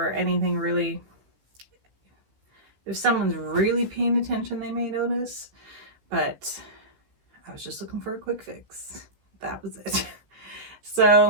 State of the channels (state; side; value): late; left; 15 ms